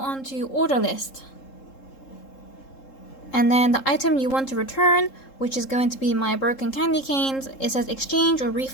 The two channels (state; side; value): late; right; 3.7 ms